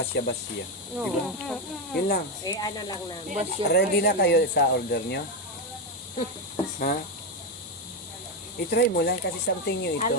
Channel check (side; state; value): both; normal; correlation 0.08